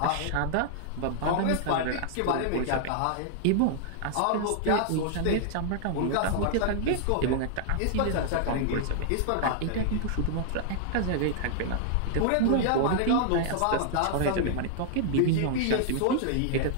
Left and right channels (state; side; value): different; both; correlation -0.01